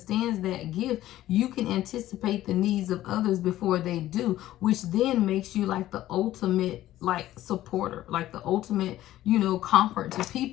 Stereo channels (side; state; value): right; quieter; 14.3 dB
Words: that gift, you can anticipate the needs of others before they do, which then makes you like the ultimate supporter, like the ultimate, comfort to